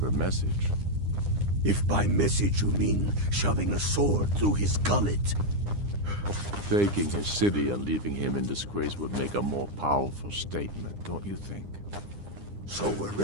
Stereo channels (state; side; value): late; left; 9.9 ms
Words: message? If by message you mean shoving a sword through his gullet. Taking his city and leaving him in disgrace would make a more powerful statement, don't you think? So we're